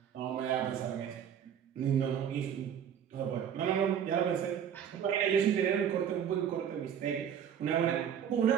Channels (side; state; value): left; quieter; 8.7 dB